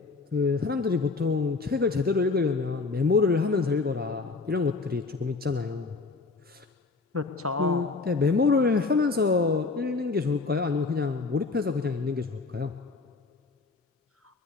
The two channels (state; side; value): quieter; right; 4.1 dB